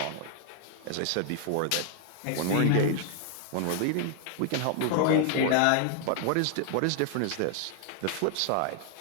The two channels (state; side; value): different; both; correlation 0.00